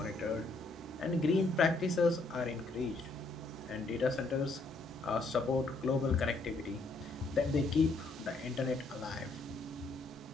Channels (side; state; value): right; quieter; 3.3 dB